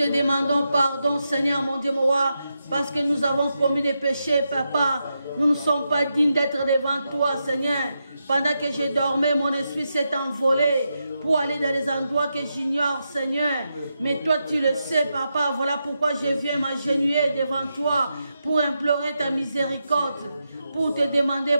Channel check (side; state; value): both; inverted; correlation -0.86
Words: demandons pardon, Seigneur, mon Dieu, mon roi, parce que nous avons commis des péchés, Papa. Nous ne sommes pas dignes d'être devant toi, Seigneur. Pendant que je dormais, mon esprit s'est envolé pour aller dans les endroits que j'ignore, Seigneur. Mais toi, tu le sais, Papa. Voilà pourquoi je viens m'agenouiller devant toi pour implorer ta miséricorde, pour te demander